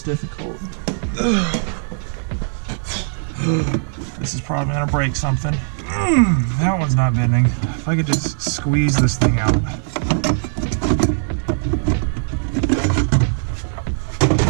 difficult. This is probably gonna break something. That one's not bending. If I could just squeeze this thing out.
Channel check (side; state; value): left; silent; digital silence